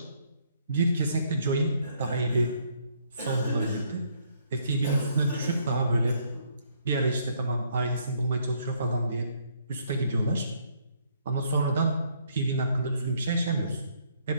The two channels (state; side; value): inverted; both; correlation -0.68